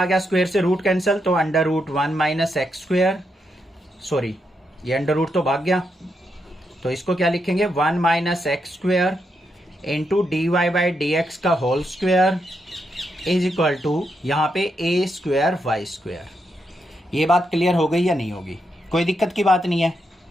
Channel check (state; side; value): normal; both; correlation 0.82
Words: आ गया, स्क्वायर से रूट कैंसिल, तो under root 1 minus x square, sorry ये अंडर रूट तो भाग गया, तो इसको क्या लिखेंगे, 1 minus x square into d Y by D x का whole square is equal to, यहां पे ए स्क्वायर वाई स्क्वायर। ये बात क्लियर हो गई या नहीं होगी, कोई दिक्कत की बात नहीं है।